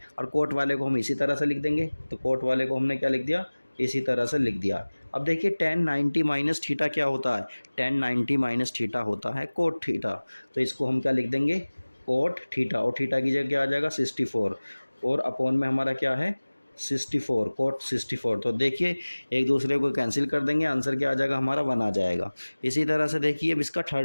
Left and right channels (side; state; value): both; inverted; correlation -1.00